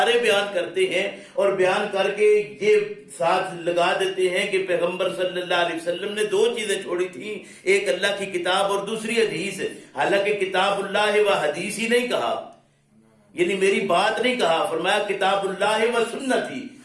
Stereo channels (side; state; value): both; identical; correlation 1.00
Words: بیان کرتے ہیں اور بیان کر کے یہ ساتھ لگا دیتے ہیں کہ پیغمبر صلی اللہ علیہ وسلم نے دو چیزیں چھوڑی تھیں، ایک اللہ کی کتاب اور دوسری حدیث۔ حالانکہ کتاب اللہ و حدیث ہی نہیں کہا، یعنی میری بات نہیں کہا، فرمایا کتاب اللہ و سنتی،